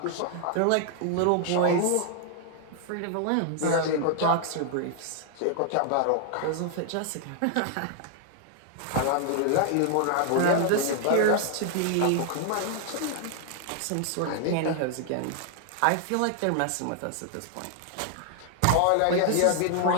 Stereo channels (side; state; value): both; different; correlation 0.00